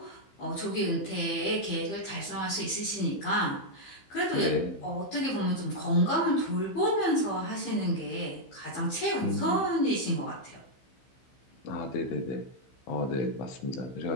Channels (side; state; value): right; late; 15 ms